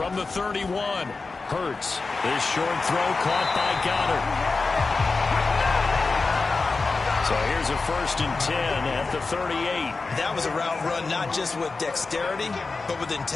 the 31, Hurts. This short throw caught by Goddard. So here's a 1st and 10 at the 38. That was a route run not just with dexterity, but with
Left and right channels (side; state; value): right; quieter; 4.0 dB